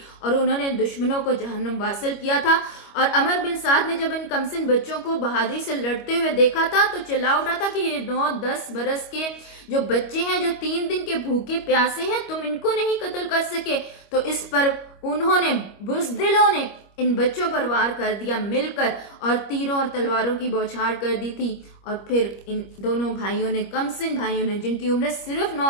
اور انہوں نے دشمنوں کو جہنم واصل کیا تھا۔ اور عمر بن سعد نے جب ان کمسن بچوں کو بہادری سے لڑتے ہوئے دیکھا تھا تو چلا اٹھا تھا کہ یہ 9-10 برس کے جو بچے ہیں، جو 3 دن کے بھوکے پیاسے ہیں، تم ان کو نہیں قتل کر سکے۔ تو اس پر انہوں نے، بزدلوں نے ان بچوں پر وار کر دیا مل کر، اور تیروں اور تلواروں کی بوچھاڑ کر دی تھی۔ اور پھر ان دونوں بھائیوں نے، کمسن بھائیوں نے، جن کی عمریں صرف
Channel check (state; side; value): late; right; 25 ms